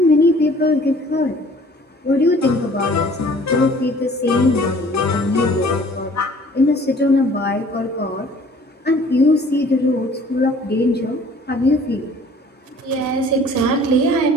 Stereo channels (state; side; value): normal; both; correlation 0.52